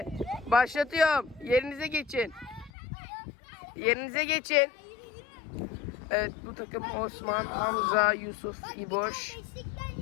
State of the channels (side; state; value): right; drops out; at 2.7 s